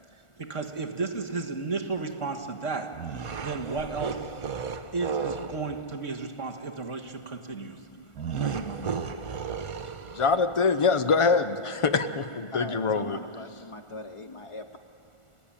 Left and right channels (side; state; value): right; late; 1.4 ms